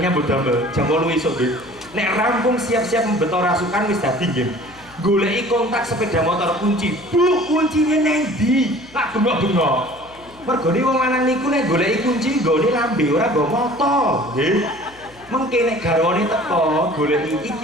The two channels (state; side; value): noise; left; hum, 25 dB below the sound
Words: mbodambel jam 8 esuk nggih. Nek rampung siap-siap membeto rasukan wis dadi nggih. Goleki kontak sepeda motor kunci. Bu, kuncinya nang ndi? Tak bengok-bengok. Mergone wong lanang niku nek goleki kunci nggone lambe ora nggo moto, nggih. Mengke nek garwane teko goleki